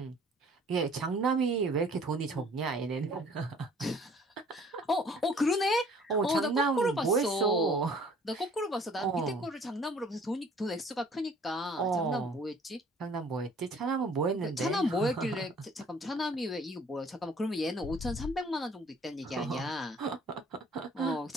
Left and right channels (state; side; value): normal; both; correlation 0.54